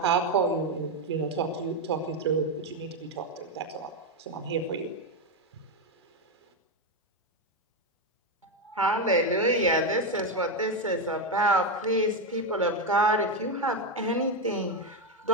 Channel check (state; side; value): normal; both; correlation 0.08